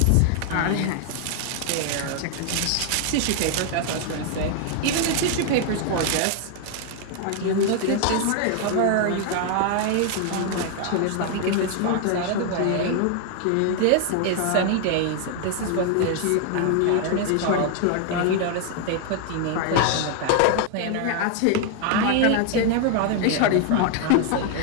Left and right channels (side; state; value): both; different; correlation 0.00